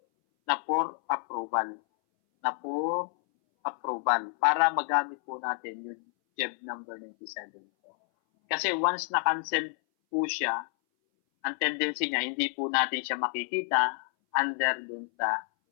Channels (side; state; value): right; silent; 58 dB below the other